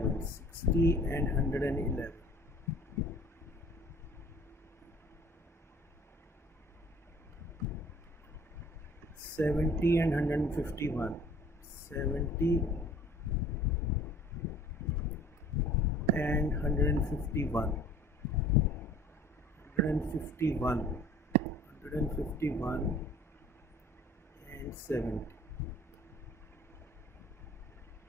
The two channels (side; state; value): both; normal; correlation 0.50